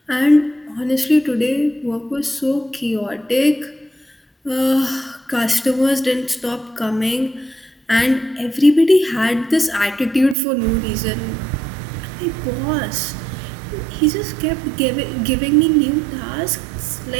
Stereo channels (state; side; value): drops out; left; at 10.4 s